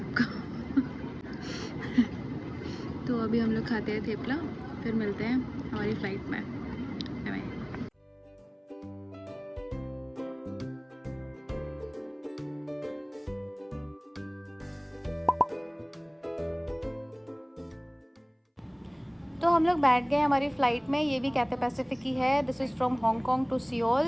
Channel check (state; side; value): identical; both; correlation 1.00